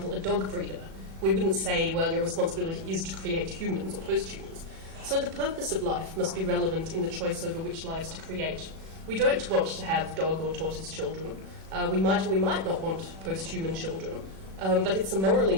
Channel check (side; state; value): left; late; 37 ms